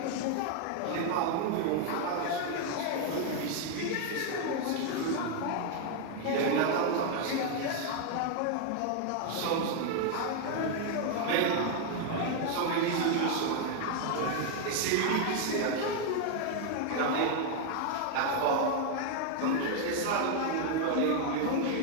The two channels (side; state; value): both; different; correlation 0.00